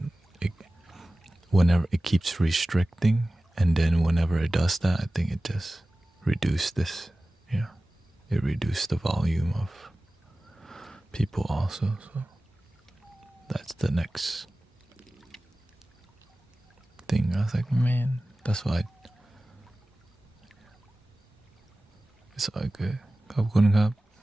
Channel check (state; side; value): normal; both; correlation 0.97